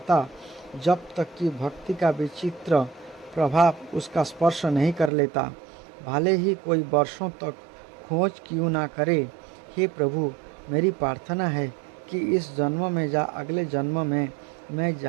जब तक कि भक्ति का विचित्र प्रभाव उसका स्पर्श नहीं कर लेता, भले ही कोई वर्षों तक खोज क्यों ना करे। हे प्रभु, मेरी प्रार्थना है कि इस जन्म में या अगले जन्म में मैं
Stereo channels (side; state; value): left; drops out; at 5.1 s